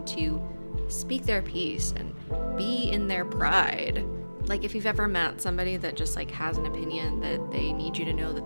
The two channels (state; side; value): inverted; both; correlation -1.00